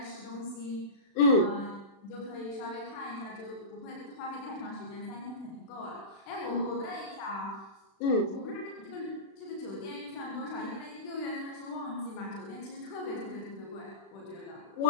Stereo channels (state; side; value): late; right; 36 ms